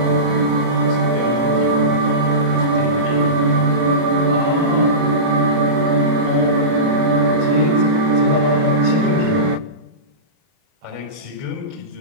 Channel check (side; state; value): left; late; 32 ms